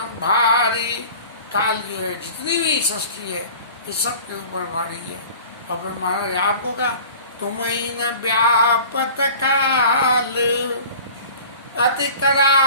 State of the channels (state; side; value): inverted; both; correlation -0.42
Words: भारी। काल जो है जितनी भी सृष्टि है ये सब के ऊपर भारी है। और फिर महाराज आपको क्या, तुम्हें न व्यापत काल, अति